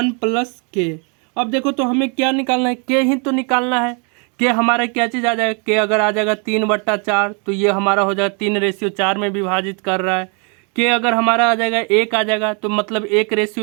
प्लस के। अब देखो तो हमें क्या निकालना है, के ही तो निकालना है। के हमारा क्या चीज़ आ जाएगा, के अगर आ जाएगा 3/4 तो ये हमारा हो जाएगा 3:4 में विभाजित कर रहा है। के अगर हमारा आ जाएगा 1 आ जाएगा तो मतलब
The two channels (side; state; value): left; quieter; 36.5 dB